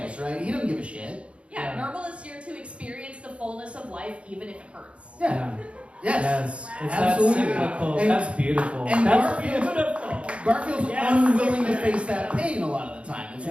right? He doesn't give a shit. Yeah, Nermal is here to experience the fullness of life, even if it hurts. Yeah. Yes. It's Absolutely. that cyclical. And- That's beautiful. and That's Garfield- beautiful. Garfield's Yes. unwilling to face that pain a lot of the time. It's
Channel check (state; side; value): late; left; 0.060 ms